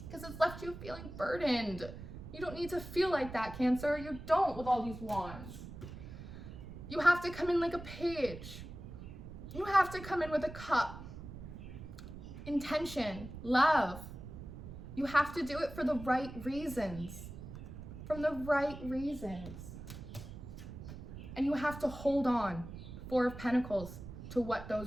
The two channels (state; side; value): noise; right; rumble, 11 dB below the sound